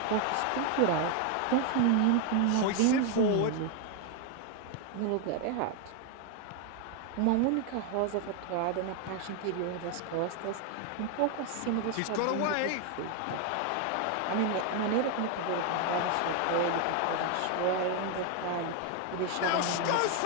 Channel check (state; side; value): different; both; correlation 0.01